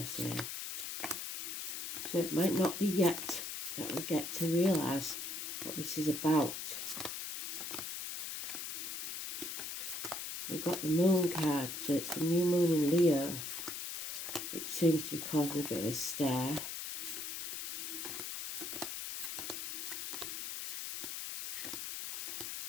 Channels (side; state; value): left; noise; hiss, 5 dB below the sound